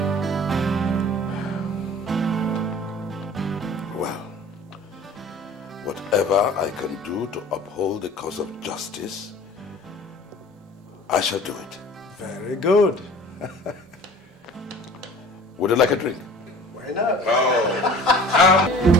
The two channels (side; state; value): both; normal; correlation 0.45